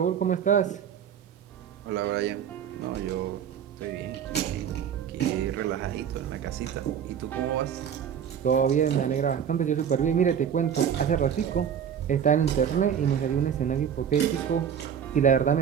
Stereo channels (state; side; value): quieter; left; 8.4 dB